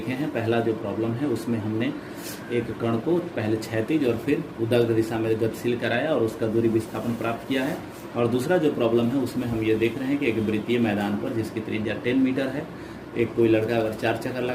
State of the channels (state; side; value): identical; both; correlation 1.00